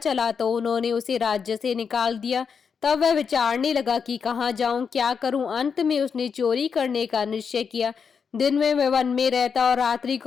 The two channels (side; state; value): right; quieter; 6.3 dB